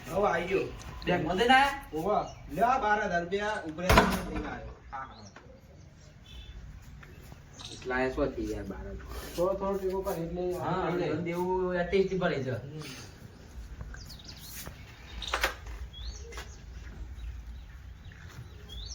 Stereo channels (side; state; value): both; identical; correlation 1.00